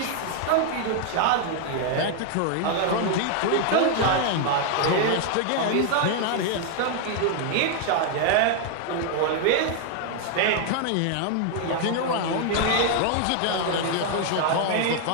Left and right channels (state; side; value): different; both; correlation 0.00